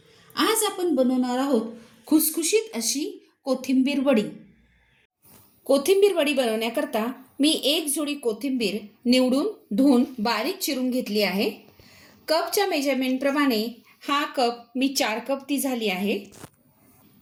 आज आपण बनवणार आहोत खुसखुशीत अशी कोथिंबीर वडी। कोथिंबीर वडी बनवण्याकरता मी एक जोडी कोथिंबीर निवडून धुवून बारीक चिरून घेतली आहे। कपच्या मेजरमेंट प्रमाणे हा कप मी 4 कप ती झाली आहे।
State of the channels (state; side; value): identical; both; correlation 1.00